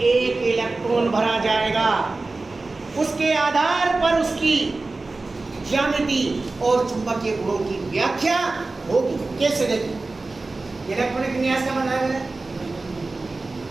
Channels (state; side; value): quieter; left; 3.4 dB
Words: इलेक्ट्रॉन भरा जाएगा। उसके आधार पर उसकी ज्यामिति और चुंबकीय गुणों की व्याख्या होगी। कैसे? देखिए इलेक्ट्रॉनिक विन्यास का मतलब है,